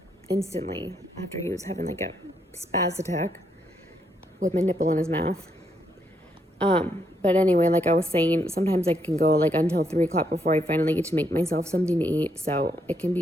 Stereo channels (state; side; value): normal; both; correlation 0.76